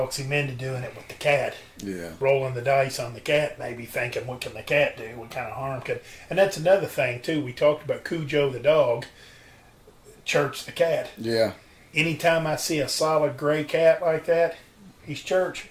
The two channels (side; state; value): both; identical; correlation 1.00